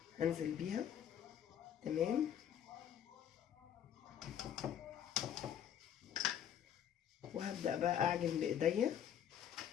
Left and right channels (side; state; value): right; quieter; 9.5 dB